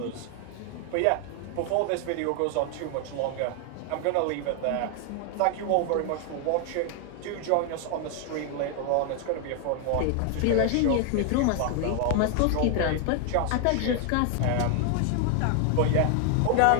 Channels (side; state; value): both; different; correlation 0.00